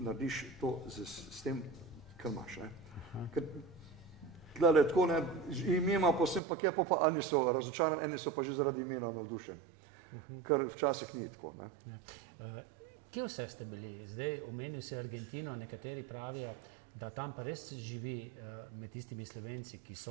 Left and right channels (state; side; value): drops out; left; at 6.4 s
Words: to s tem, kar imaš. Ker tlele tako, ne, ime ima posebno, pa kje pa eni so razočarani, eni so pa že zaradi imena navdušeni. Kar včasih ni tako. Ne. Ja. Kje vse ste bili? Zdaj omenil si Argentino, nekateri pravijo, da tam pa res živi med tistimi Slovenci, ki